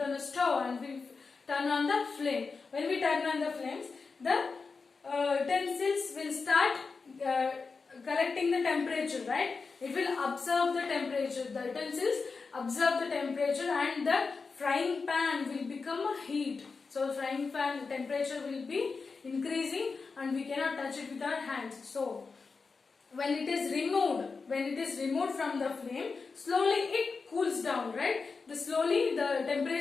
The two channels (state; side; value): quieter; right; 4.6 dB